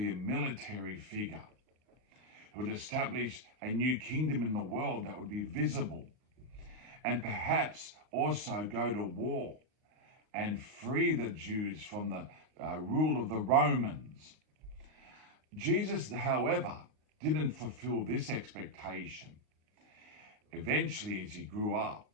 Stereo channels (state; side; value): late; left; 38 ms